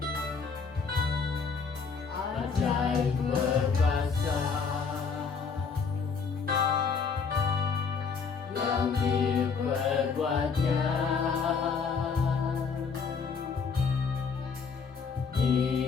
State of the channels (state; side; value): quieter; right; 5.4 dB